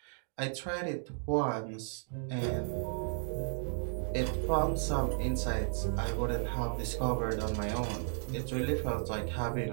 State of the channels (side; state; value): left; silent; digital silence